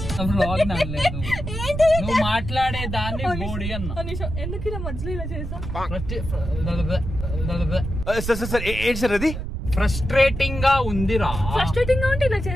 నువ్వు మాట్లాడే దాన్ని బోడి అన్నా. ఎందుకు ఇలా మధ్యలో ఇలా చేసా? అది ఫ్రస్ట్రేటింగ్ గా ఉందిరా. ఫ్రస్ట్రేటింగ్ గా ఉంటే ఇలా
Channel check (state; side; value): noise; right; rumble, 6 dB below the sound